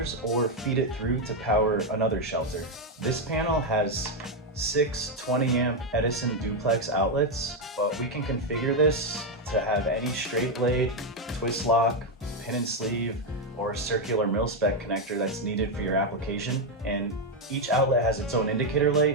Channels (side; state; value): both; normal; correlation 0.04